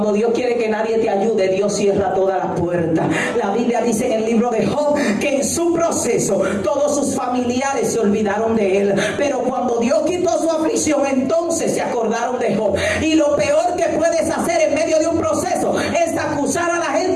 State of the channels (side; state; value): both; identical; correlation 1.00